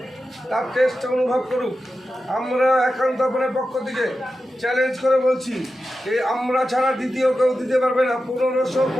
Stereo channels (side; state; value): both; normal; correlation 0.91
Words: তার টেস্ট অনুভব করুক। আমরা একান্ত আপনার পক্ষ থেকে চ্যালেঞ্জ করে বলছি, এই আমরা ছাড়া দ্বিতীয় কেউ দিতে পারবে না।